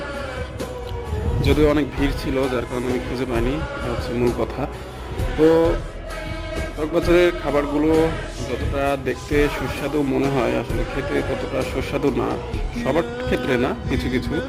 যদিও অনেক ভিড় ছিল, যার কারণে আমি খুঁজে পাইনি। এটা হচ্ছে মূল কথা। তো চকবাজারের খাবারগুলো যতটা দেখতে সুস্বাদু মনে হয়, আসলে খেতে ততটা সুস্বাদু না, সবার ক্ষেত্রে না, কিছু কিছু।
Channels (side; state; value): both; identical; correlation 1.00